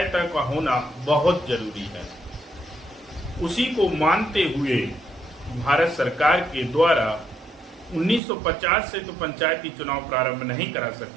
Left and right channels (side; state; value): left; drops out; at 8.2 s